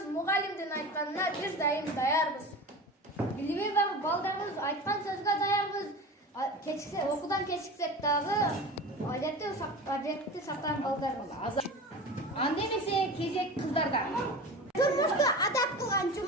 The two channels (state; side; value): normal; both; correlation 0.32